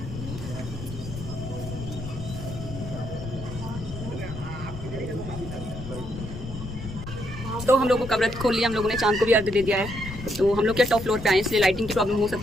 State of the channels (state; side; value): noise; left; rumble, 9 dB below the sound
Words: तो हम लोगों का व्रत खोल लिया, हम लोगों ने चांद को भी अर्घ दे दिया है। तो हम लोग क्या टॉप फ्लोर पे आए, इसलिए लाइटिंग की प्रॉब्लम हो